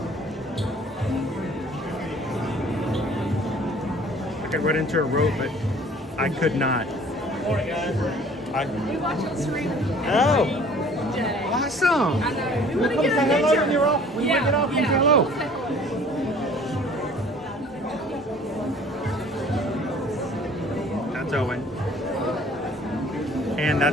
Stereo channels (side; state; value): both; normal; correlation 0.51